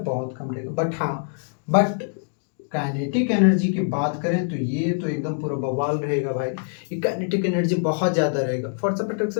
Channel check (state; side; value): silent; right; digital silence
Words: बहुत कम रहेगा। बट काइनेटिक एनर्जी की बात करें तो ये तो एकदम पूरा बवाल रहेगा भाई। ये काइनेटिक एनर्जी बहुत ज़्यादा रहेगा, force of